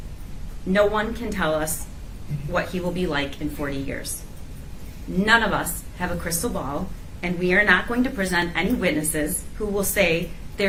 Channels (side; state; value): both; identical; correlation 1.00